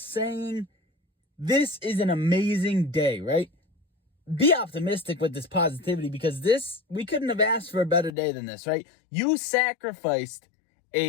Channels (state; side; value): drops out; right; at 8.1 s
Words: this is an amazing day, right? Be optimistic with this positivity because we couldn't have asked for a better day than this, right? You sacrificed